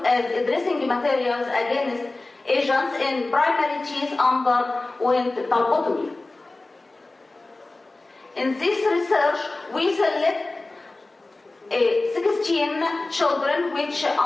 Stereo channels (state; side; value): quieter; right; 3.1 dB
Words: as dressing materials against agents in primary teeth underwent pulpotomy. In this research, we select 16 children which